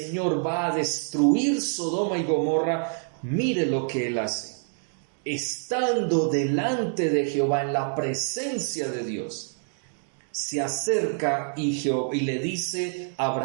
va a destruir Sodoma y Gomorra, mire lo que él hace. Estando delante de Jehová, en la presencia de Dios, se acerca y le dice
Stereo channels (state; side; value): silent; left; 60 dB below the other